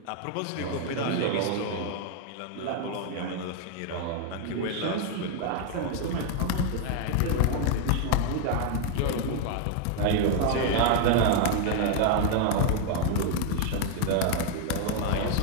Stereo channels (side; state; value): both; different; correlation 0.00